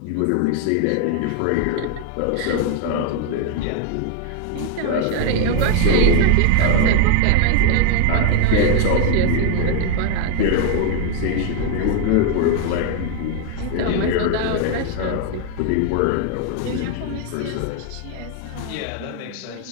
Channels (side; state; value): both; different; correlation 0.00